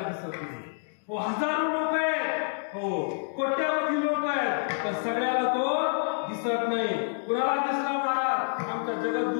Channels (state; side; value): silent; right; digital silence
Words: दिसत नाही. हो हजारो लोक आहेत, हो कोट्यावधी लोक आहेत, पण सगळ्याला तो दिसत नाही. कुणाला दिसला महाराज आमच्या